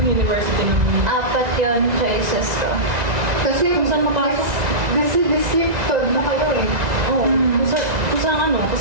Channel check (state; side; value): late; left; 1.9 ms